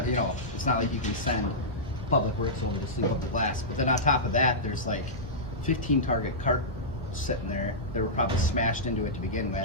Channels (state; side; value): normal; both; correlation -0.14